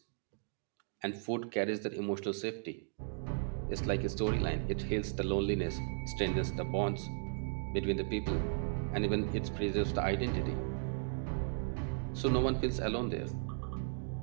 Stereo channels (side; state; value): left; silent; digital silence